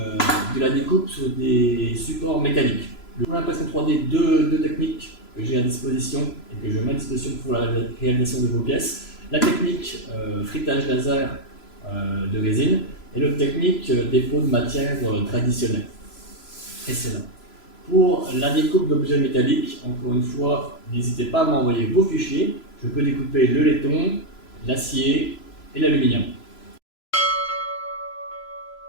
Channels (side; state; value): right; late; 3.0 ms